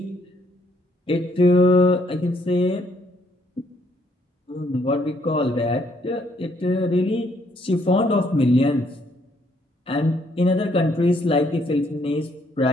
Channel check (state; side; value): normal; both; correlation 0.69